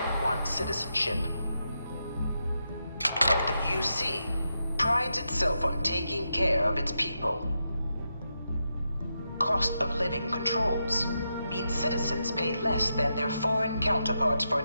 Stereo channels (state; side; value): inverted; both; correlation -0.85